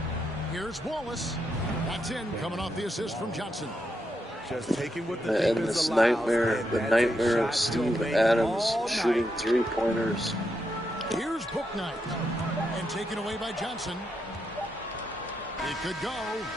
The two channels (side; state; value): both; normal; correlation 0.82